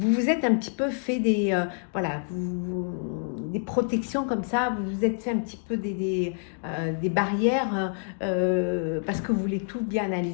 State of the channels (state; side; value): silent; right; 58 dB below the other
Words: vous vous êtes un petit peu fait des, voilà, des protections comme ça, vous vous êtes fait un petit peu des barrières parce que vous voulez tout bien